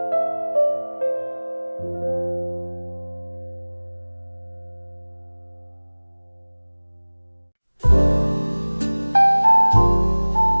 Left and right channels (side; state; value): both; inverted; correlation -1.00